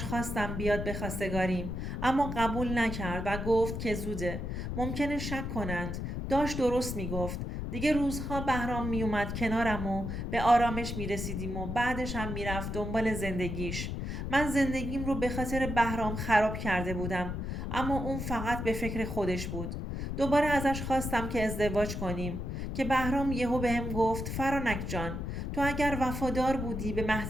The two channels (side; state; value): left; noise; rumble, 4 dB below the sound